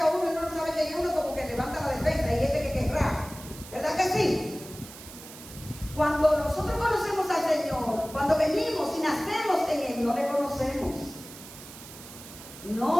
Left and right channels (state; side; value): noise; right; hiss, 16 dB below the sound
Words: a uno y uno no sabe quién es, uno como que levanta la defensa, y este que querrá. ¿Verdad que sí? Cuando nosotros conocemos al Señor, cuando venimos y nacemos en Él, no le conocemos.